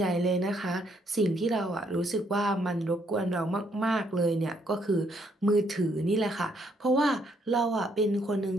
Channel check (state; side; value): normal; both; correlation 0.71